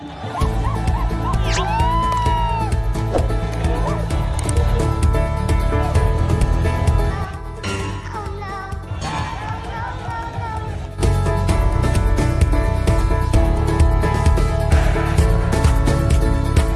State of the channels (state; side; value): identical; both; correlation 1.00